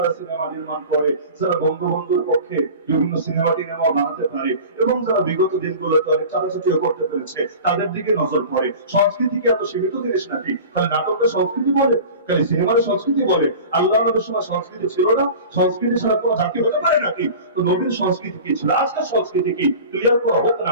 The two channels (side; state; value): both; inverted; correlation -0.37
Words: সিনেমা নির্মাণ করে, যারা বঙ্গবন্ধুর পক্ষে বিভিন্ন সিনেমা টিনেমা বানাতে পারে এবং যারা বিগত দিনগুলোতে অনেক চাটাচাটি করতে পেরেছে তাদের দিকে নজর পড়ে। সংস্কৃতিকে এত সীমিত জিনিস নাকি? খালি নাটকের সংস্কৃতি বলে, খালি সিনেমার সংস্কৃতি বলে? আল্লাহ নবীর সময় সংস্কৃতি ছিল না? সংস্কৃতি ছাড়া কোনো জাতি হতে পারে নাকি? তো নবীর সংস্কৃতি কি ছিল, আজকের সংস্কৃতি কি, ক্লিয়ার করা হোক